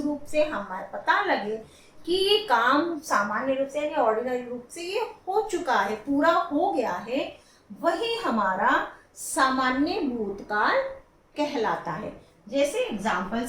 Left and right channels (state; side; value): identical; both; correlation 1.00